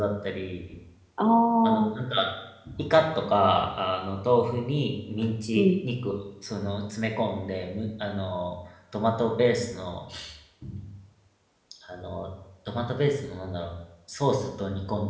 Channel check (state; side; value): identical; both; correlation 1.00